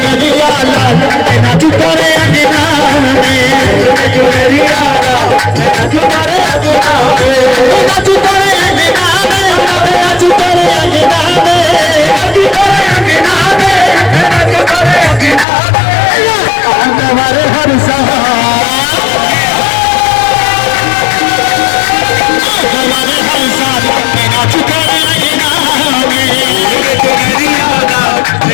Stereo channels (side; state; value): right; drops out; at 15.5 s